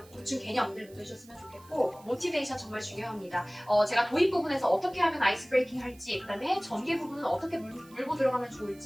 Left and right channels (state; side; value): noise; right; hiss, 25 dB below the sound